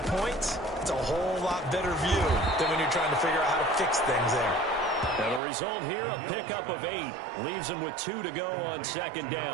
it's a whole lot better view than when you're trying to figure out how to fix things there. And the result here, a pickup of 8. Leaves them with 2 to go on 2nd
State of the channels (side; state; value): left; drops out; at 5.4 s